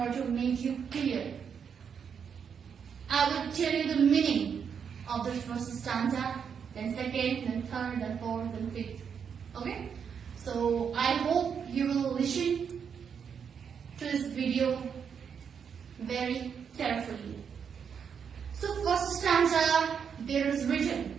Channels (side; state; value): left; quieter; 7.1 dB